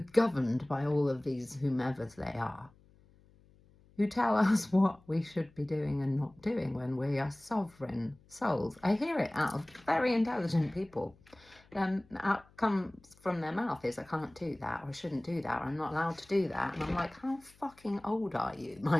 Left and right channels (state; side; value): noise; left; hum, 28 dB below the sound